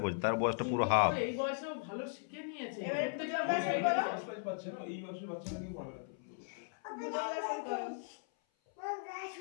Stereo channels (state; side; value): silent; right; 53 dB below the other